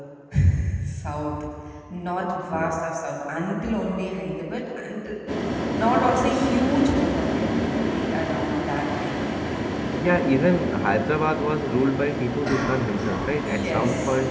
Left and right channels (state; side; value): identical; both; correlation 1.00